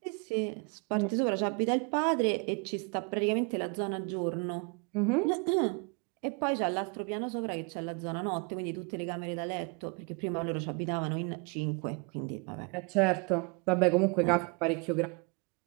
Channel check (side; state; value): left; quieter; 33.4 dB